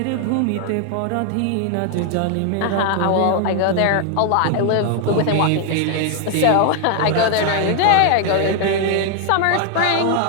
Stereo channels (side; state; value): both; different; correlation 0.00